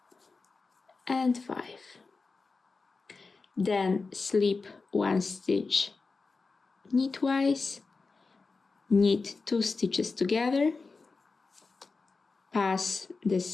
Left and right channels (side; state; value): right; quieter; 4.2 dB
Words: and 5. Then slip 1 stitch knitwise, knit 2 stitches together, pass the